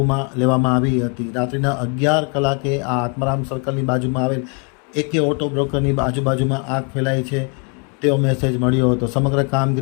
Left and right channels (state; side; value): quieter; right; 35.7 dB